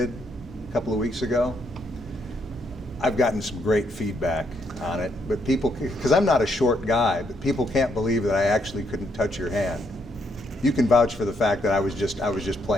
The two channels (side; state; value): both; normal; correlation 0.74